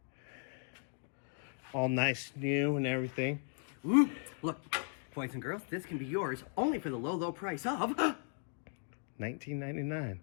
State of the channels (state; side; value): silent; right; 53 dB below the other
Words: All nice, new, and everything. Ooh, look, boys and girls, this can be yours only for the low, low price of... $19.99.